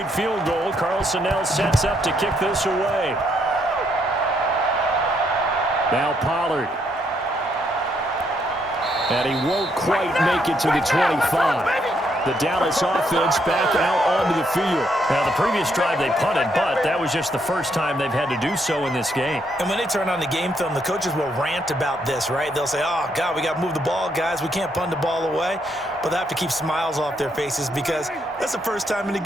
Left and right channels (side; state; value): both; normal; correlation 0.74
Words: field goal, Carlson now sets up to kick this away. Now Pollard. And he won't quite make it to the 25. The Dallas offense back out onto the field. Now, the previous drive they punted, but that was just the first time they've had to do so in this game. And when they turn on the game film, the coaches will rant about this, right? They'll say, oh, God, we got to move the ball, guys. We can't punt the ball away. But they have to keep smiles off their faces because that's the first time in the